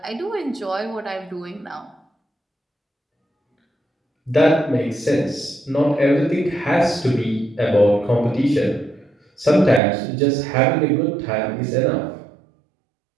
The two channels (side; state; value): left; drops out; at 9.8 s